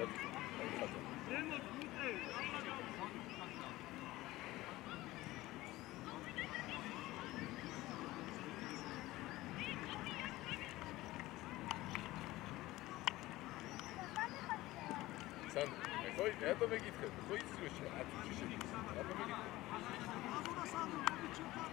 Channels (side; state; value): right; quieter; 17.9 dB